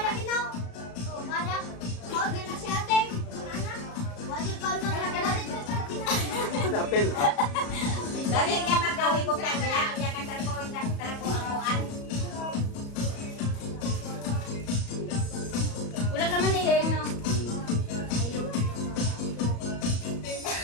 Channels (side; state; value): right; late; 34 ms